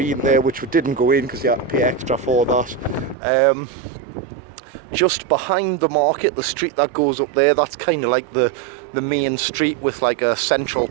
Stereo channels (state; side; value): drops out; left; at 3.2 s